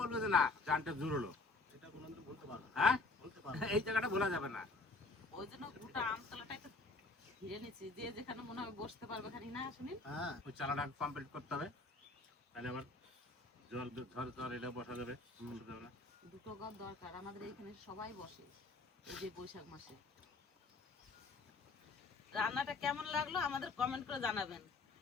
যে না জানটা জুড়লো, এটা কোনোদিন বলতে পারবো না। হ্যাঁ বলতে পারবো এই জায়গাটা ভোলা যাবে না। ওই জন্য গোটা আমতলাটা একটু ঘিরে নিচ্ছি, যে যেখানে মনে হয় বসতে পারবে খানি না শুনি। হ্যাঁ ওই চালাটা কমপ্লিট করতে হবে, তাহলে আবার জল ঝড় ঝড় এটা বসা যাবে, বসা যাবে না। দুটো ঘর দরকার আমাদের এইখানে, সবাই বসে এই যে বৈশাখ মাসে। রান্নাটা কেমন লাগলো আমাদের কমেন্ট করে জানাবেন।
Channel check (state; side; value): quieter; right; 3.5 dB